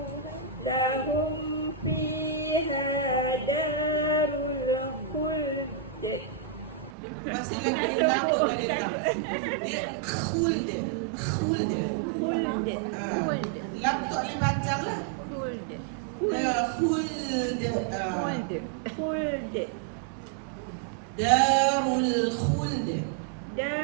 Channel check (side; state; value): left; drops out; at 6.9 s